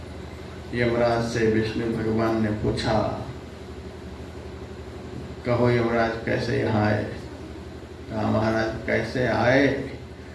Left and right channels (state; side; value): identical; both; correlation 1.00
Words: यमराज से विष्णु भगवान ने पूछा, कहो यमराज कैसे यहाँ आए। कहा, महाराज कैसे आए,